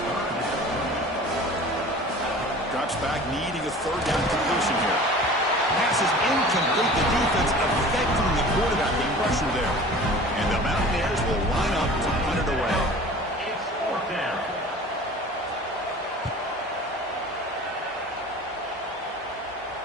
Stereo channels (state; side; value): normal; both; correlation 0.42